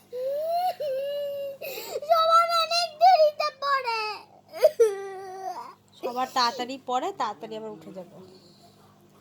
সবার তাড়াতাড়ি পড়ে, তাড়াতাড়ি আবার উঠে যাবে।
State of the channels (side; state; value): both; identical; correlation 1.00